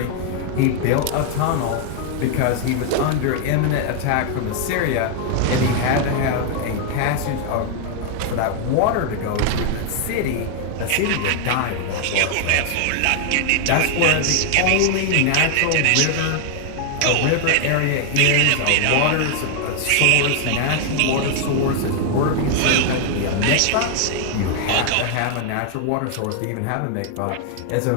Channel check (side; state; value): both; different; correlation 0.00